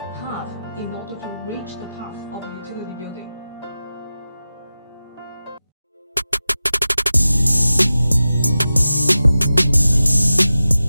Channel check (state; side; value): inverted; both; correlation -0.94